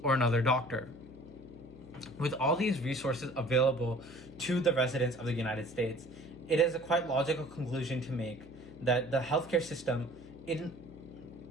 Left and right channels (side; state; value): left; noise; hum, 19 dB below the sound